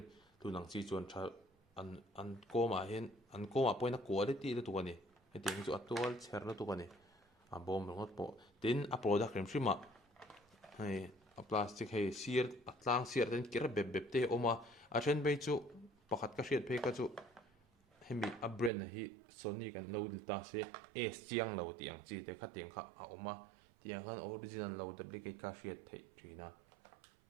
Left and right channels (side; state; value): left; drops out; at 18.7 s